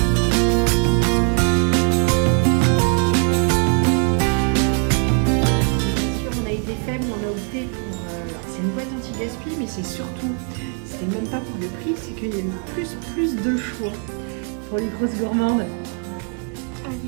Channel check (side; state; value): left; quieter; 39.6 dB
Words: C'est même pas pour le prix, c'est qu'il y a plus de choix pour les grosses gourmandes.